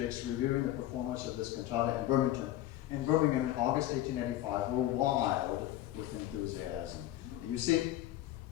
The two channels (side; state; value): right; quieter; 14.2 dB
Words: reviewing the performance of this cantata in Birmingham in August 1885 were wild with enthusiasm. You see,